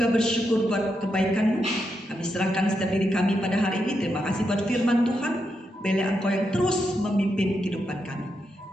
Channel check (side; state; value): both; normal; correlation 0.84